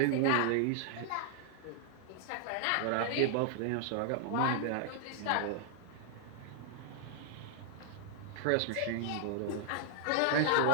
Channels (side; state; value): both; different; correlation 0.00